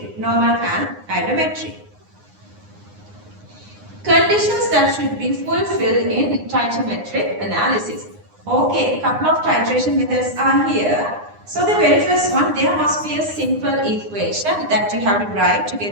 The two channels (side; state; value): left; late; 9.7 ms